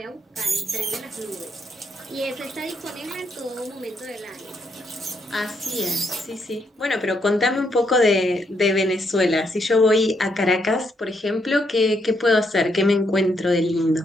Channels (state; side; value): normal; both; correlation 0.75